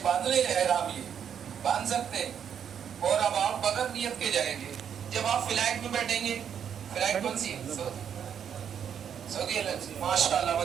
बांध ले एहराम, ये बांध सकते हैं। और अब आप बगैर नियत के जाएंगे, जब आप फ्लाइट में बैठेंगे, फ्लाइट कौन सी है, सऊदी एयरलाइंस, माशाल्लाह,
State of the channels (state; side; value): quieter; left; 8.3 dB